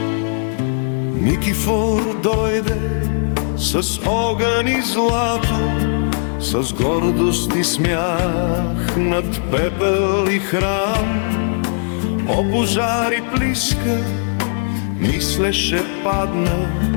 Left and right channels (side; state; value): right; silent; digital silence